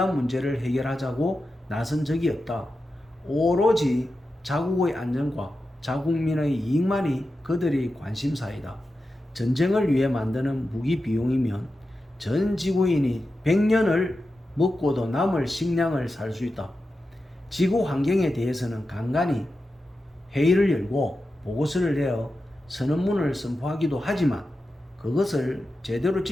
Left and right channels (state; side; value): normal; both; correlation 0.91